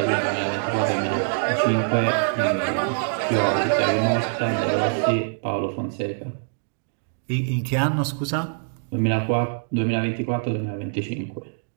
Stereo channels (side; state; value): left; silent; digital silence